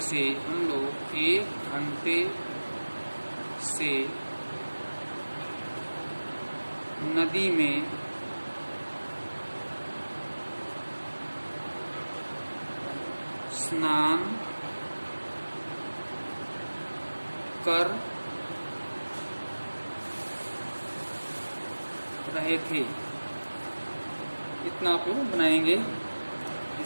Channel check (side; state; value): both; inverted; correlation -1.00